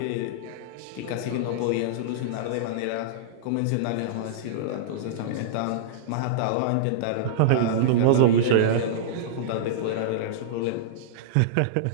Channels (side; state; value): both; different; correlation -0.02